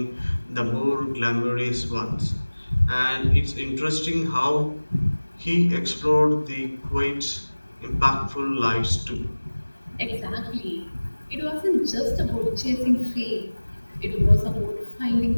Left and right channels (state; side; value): inverted; both; correlation -1.00